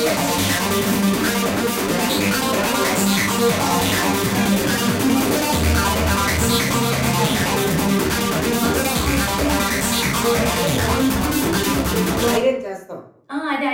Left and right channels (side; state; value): both; identical; correlation 1.00